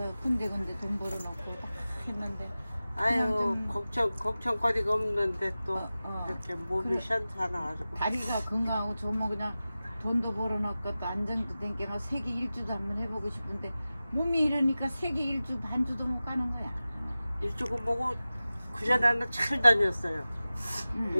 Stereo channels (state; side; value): inverted; both; correlation -0.96